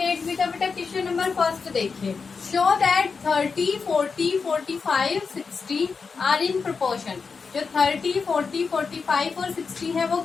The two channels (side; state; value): right; quieter; 5.1 dB